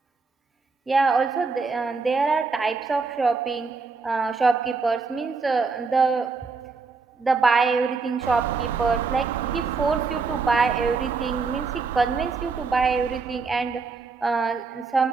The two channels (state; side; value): quieter; left; 4.5 dB